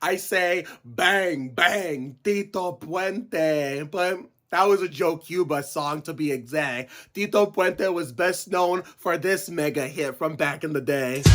I say, bang, bang, Tito Puente. But that was a Joe Cuba song, to be exact. Tito Puente was best known for this mega hit from back in the day.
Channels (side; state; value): both; identical; correlation 1.00